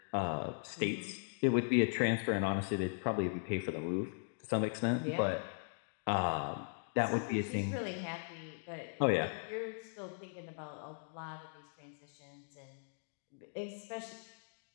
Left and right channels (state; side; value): silent; right; digital silence